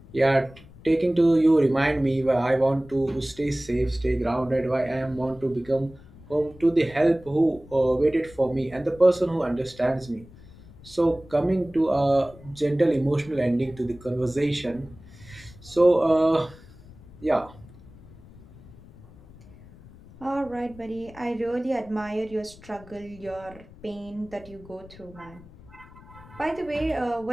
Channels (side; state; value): left; noise; rumble, 21 dB below the sound